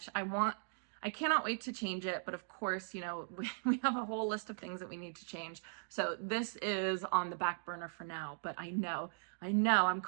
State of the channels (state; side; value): silent; left; digital silence